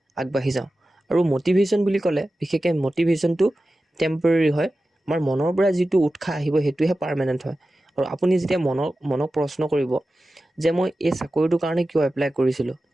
আগবাঢ়ি যাওঁ। আৰু মটিভেশ্যন বুলি ক'লে বিশেষকৈ মটিভেশ্যনটো টেম্পৰেৰী হয়, আমাৰ মনৰ পৰা যিটো উৎসাহ আহিব সেইটোহে পাৰ্মানেণ্ট হয়। আৰু আপুনি যেতিয়া মনক প্ৰশ্ন কৰিব যে মই এই চাকৰিটোৰ কাৰণে কিয় এপ্লাই কৰিছিলোঁ,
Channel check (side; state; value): both; normal; correlation 0.94